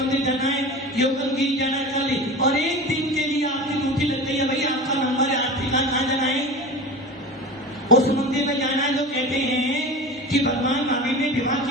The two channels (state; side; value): normal; both; correlation 0.32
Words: जाना है, योगनगिरी जाना है, कल, और एक दिन के लिए आपकी ड्यूटी लग गई है। भाई आपका नंबर है, आप ठिकाना कहाँ जाना है? उस मंदिर में जाना है जो कहते हैं कि भगवान महावीर ने विवाह